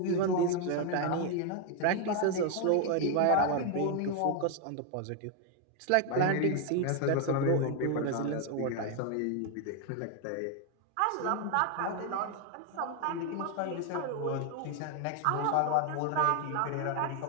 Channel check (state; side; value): different; both; correlation 0.01